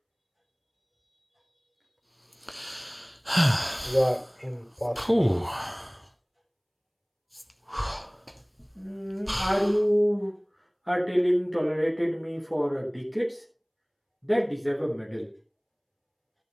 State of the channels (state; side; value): identical; both; correlation 1.00